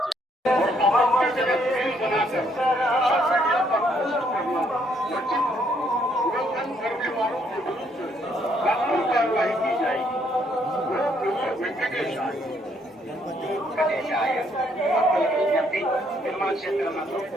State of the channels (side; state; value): both; normal; correlation 0.70